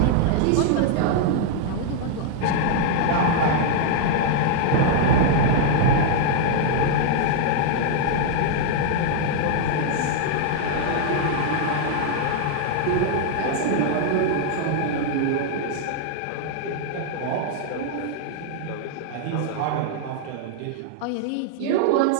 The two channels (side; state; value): both; different; correlation -0.01